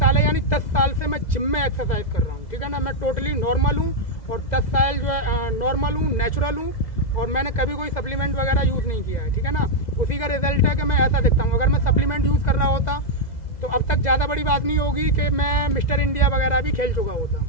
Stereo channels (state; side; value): late; right; 2.0 ms